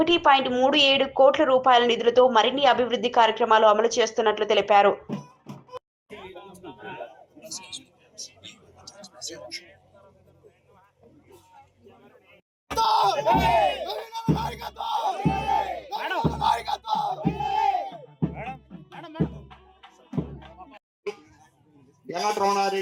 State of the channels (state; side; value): identical; both; correlation 1.00